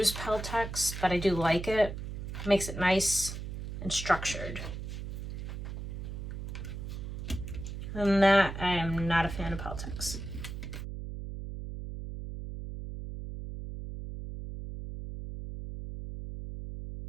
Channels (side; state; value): right; noise; hum, 7 dB below the sound